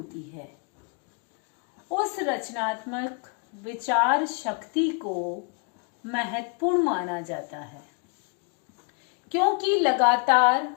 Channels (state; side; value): quieter; right; 34.8 dB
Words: है, उस रचनात्मक विचार शक्ति को महत्वपूर्ण माना जाता है। क्योंकि लगातार